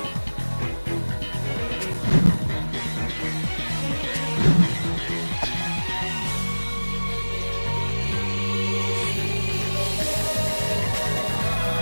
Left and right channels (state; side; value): inverted; both; correlation -1.00